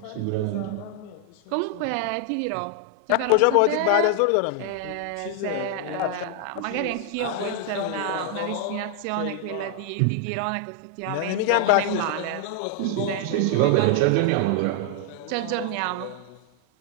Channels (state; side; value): different; both; correlation 0.00